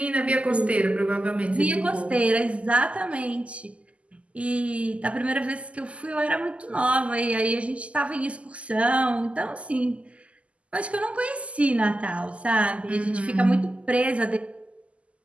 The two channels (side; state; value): left; late; 0.060 ms